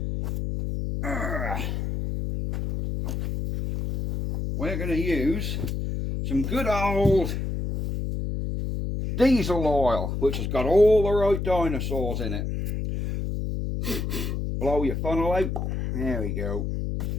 we're going to use some good old diesel oil, which has got all the right dinosaurs in it. Blow your funnel out. There we go.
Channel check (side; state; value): left; noise; hum, 2 dB below the sound